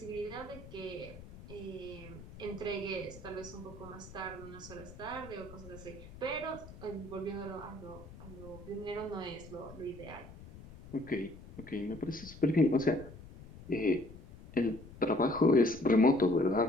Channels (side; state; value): left; noise; rumble, 16 dB below the sound